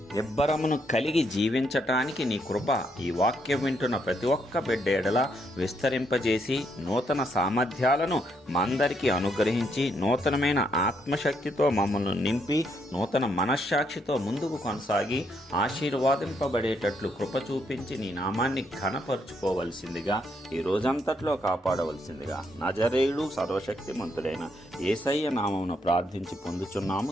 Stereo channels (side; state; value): both; normal; correlation 0.75